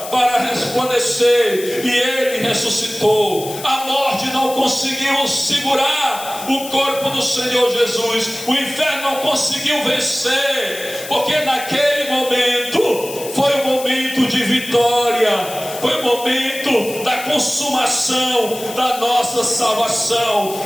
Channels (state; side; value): noise; left; hiss, 12 dB below the sound